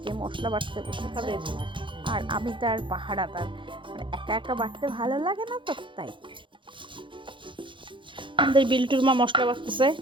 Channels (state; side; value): late; left; 0.24 ms